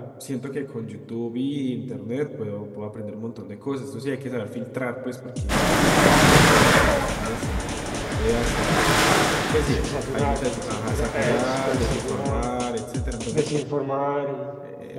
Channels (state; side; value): identical; both; correlation 1.00